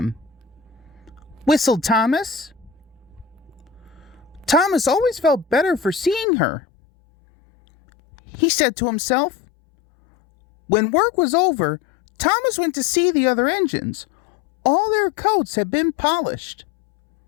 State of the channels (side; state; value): right; drops out; at 6.2 s